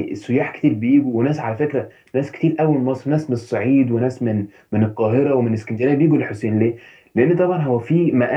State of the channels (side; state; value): both; identical; correlation 1.00